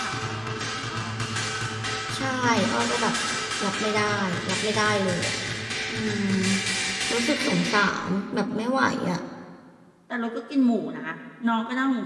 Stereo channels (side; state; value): both; identical; correlation 1.00